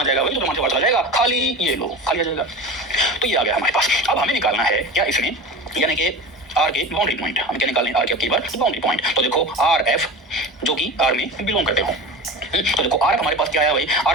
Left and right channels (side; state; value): both; normal; correlation 0.32